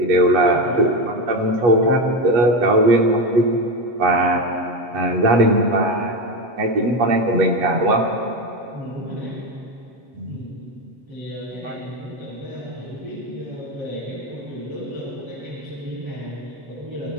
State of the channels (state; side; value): late; left; 8.3 ms